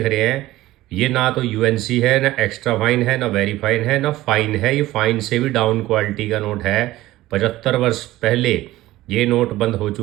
रहे हैं, ये ना तो यूएनसी है, ना एक्स्ट्रा फाइन है, ना वेरी फाइन है, ना फाइन है। ये फाइन से भी डाउन क्वालिटी का नोट है। 75 वर्ष पहले ये नोट बंद हो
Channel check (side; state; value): left; quieter; 16.6 dB